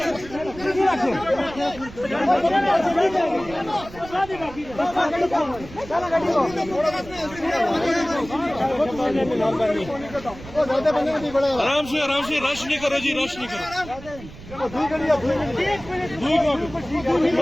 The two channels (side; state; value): right; noise; rumble, 16 dB below the sound